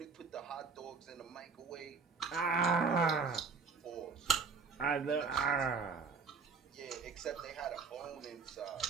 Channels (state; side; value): quieter; left; 5.0 dB